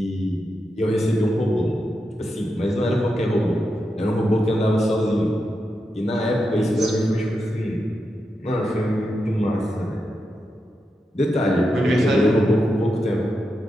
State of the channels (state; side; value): normal; both; correlation 0.87